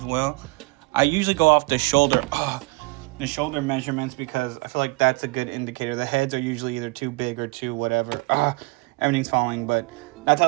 well. I usually go off the shoulder measurements because I feel like that's a good indicator. The heads are usually either too big or too whatever. Everything's falling, but that's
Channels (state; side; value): quieter; left; 25.9 dB